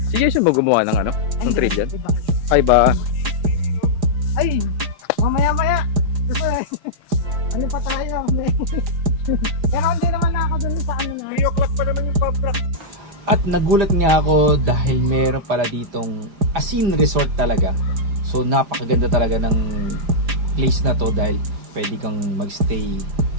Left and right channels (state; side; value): late; left; 4.9 ms